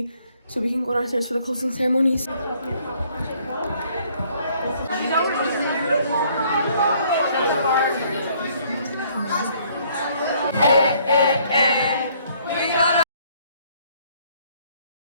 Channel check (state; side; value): inverted; both; correlation -0.63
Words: so we can go downstairs for the closing ceremonies.